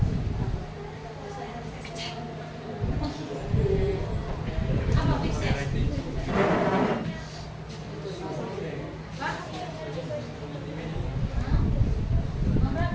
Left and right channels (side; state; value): both; identical; correlation 1.00